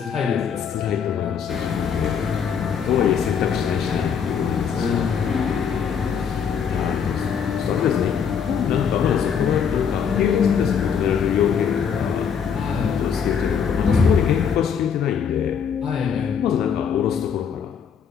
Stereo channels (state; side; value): quieter; right; 7.1 dB